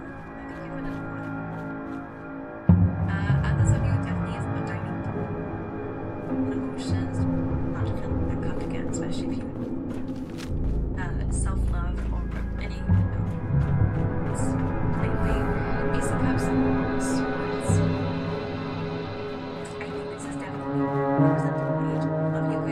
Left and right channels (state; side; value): identical; both; correlation 1.00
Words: I think you have another one. Others of you definitely is more dining. Emotions, not to feel that cup again, especially if you self-love or any, lately, Ace of Cups, Swords. I think this is definitely representing the age of you